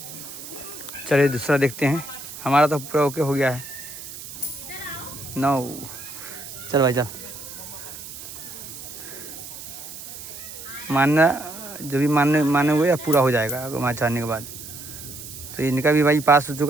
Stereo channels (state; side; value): noise; right; hiss, 12 dB below the sound